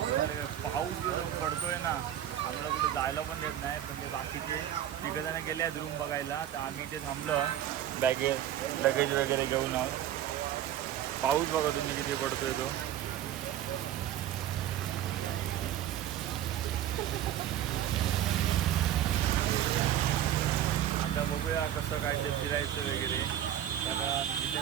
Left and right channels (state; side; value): quieter; left; 11.3 dB